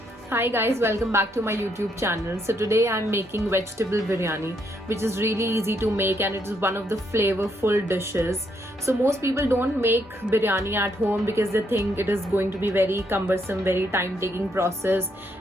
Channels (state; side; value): normal; both; correlation 0.75